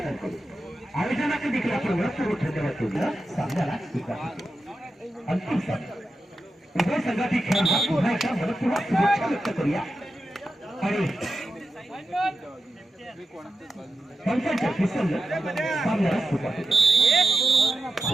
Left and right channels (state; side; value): normal; both; correlation 0.90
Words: करू. आयोजनाकडे देखील आपण महत्त्वपूर्ण धन्यवाद देऊया. सामन्याला अंतिम सामना उभय संघातील खेळाडूंना पुन्हा एकदा मनपूर्वक शुभेच्छा व्यक्त करूया आणि पंचांच्या फिसलनं सामन्याला सुरुवात होते.